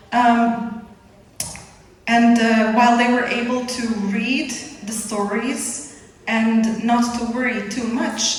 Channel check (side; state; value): both; identical; correlation 1.00